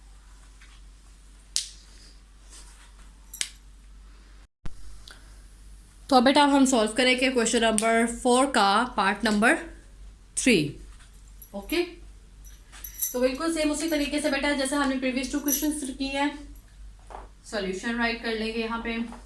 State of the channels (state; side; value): identical; both; correlation 1.00